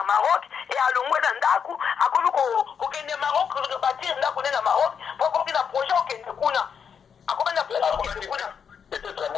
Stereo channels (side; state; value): right; quieter; 7.0 dB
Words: Maroc et alongwe na ndaku akome ko kende Maroc ko bâtir ndaku na Maroc pour kina projet okende kuna akome na projet kuna. Peut-être